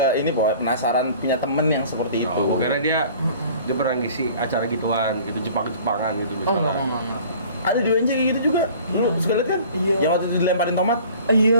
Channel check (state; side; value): inverted; both; correlation -0.48